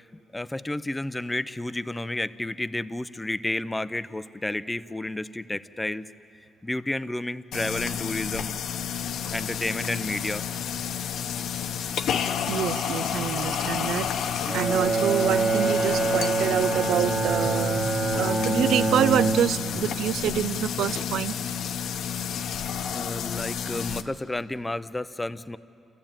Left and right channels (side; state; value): both; normal; correlation 0.68